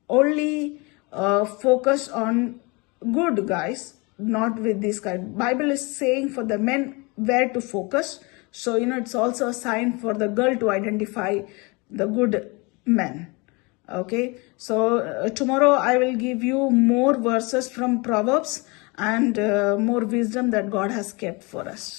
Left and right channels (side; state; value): right; quieter; 27.9 dB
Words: only focus on good guys, not with this guy. Bible is saying for the men where to focus. So, it's also a sign for the girl to identify the good men. Okay, so tomorrow I will give you more verses from Proverbs and more wisdom that God has kept for